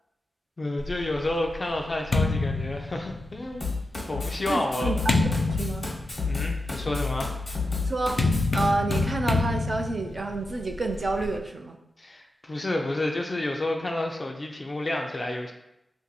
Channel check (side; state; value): both; normal; correlation 0.89